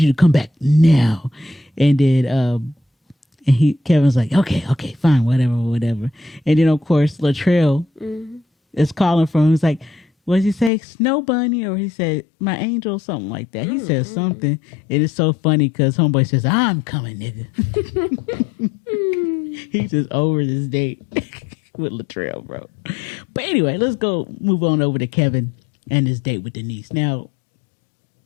to come back now. And then Kevin's like, okay, fine, whatever. And then of course Latrell is calling for him. He's like, what did he say? Snow bunny? Or he said, my angel, something like that. He says something. It is so funny because homeboy says, I'm coming, nigga. He's just over this date with Latrell, bro. But anyway, let's move on over to Kevin and his date with Denise. Now,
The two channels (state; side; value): drops out; right; at 10.7 s